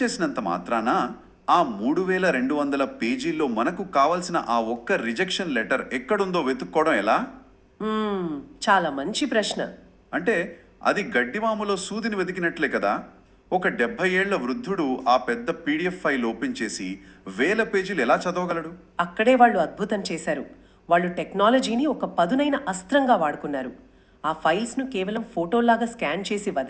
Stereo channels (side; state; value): both; identical; correlation 1.00